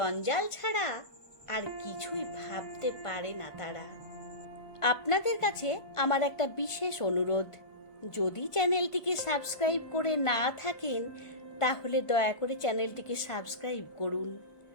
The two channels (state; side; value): late; right; 1.4 ms